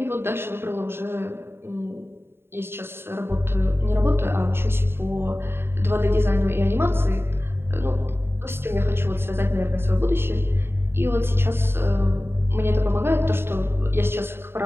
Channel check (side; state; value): left; late; 0.11 ms